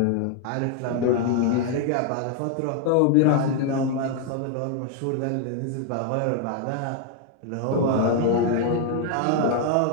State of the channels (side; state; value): both; different; correlation 0.00